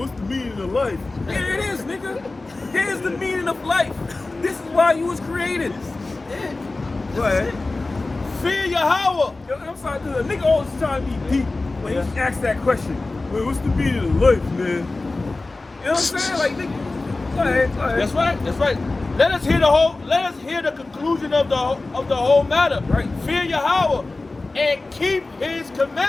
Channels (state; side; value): quieter; right; 3.3 dB